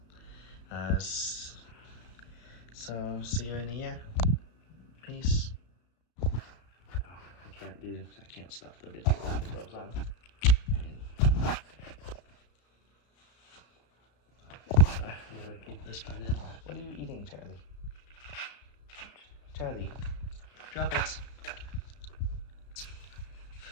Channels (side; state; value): right; late; 33 ms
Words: So see you in a year. Peace. I can't stop the video with the gloves on. Keep this one in. What are you eating, Charlie? Charlie, drop it.